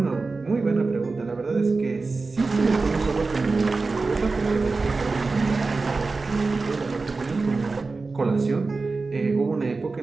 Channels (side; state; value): left; quieter; 3.9 dB